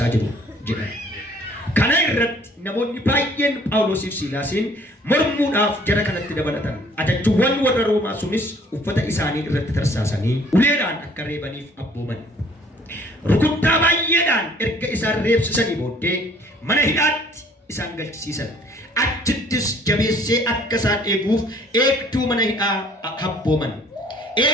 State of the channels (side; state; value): both; normal; correlation 0.57